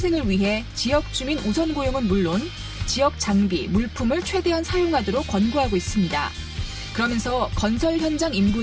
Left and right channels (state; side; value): identical; both; correlation 1.00